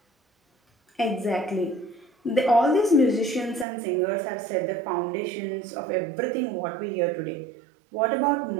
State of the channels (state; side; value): drops out; left; at 3.7 s